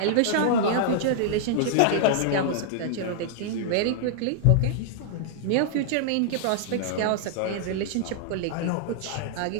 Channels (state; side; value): different; both; correlation -0.01